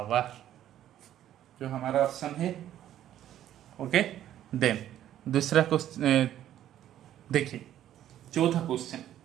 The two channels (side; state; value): left; quieter; 11.8 dB